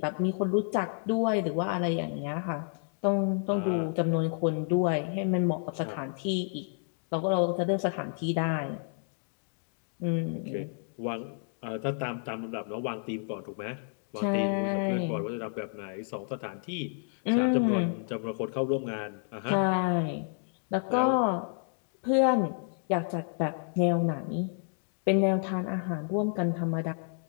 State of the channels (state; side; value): silent; right; 58 dB below the other